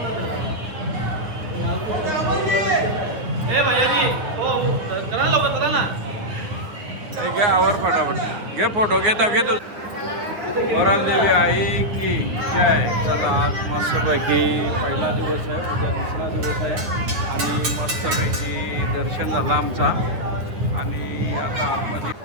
हे भैयाजी हो करा लवकर, करा ना. घ्या आवर फटाफट, घे फोटो घेता घेतो. वराल देवी आई की जय. चला आज मस्तपैकी पहिला दिवस आहे, उद्या दुसरा दिवस आहे. आणि मस्तपैकी दर्शन झालं आमचा. आणि आता आतमध्ये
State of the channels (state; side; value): late; left; 9.3 ms